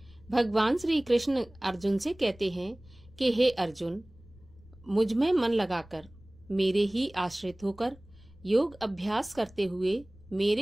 भगवान श्री कृष्ण अर्जुन से कहते हैं कि हे अर्जुन, मुझ में मन लगाकर, मेरे ही आश्रित होकर योग अभ्यास करते हुए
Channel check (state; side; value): noise; left; rumble, 24 dB below the sound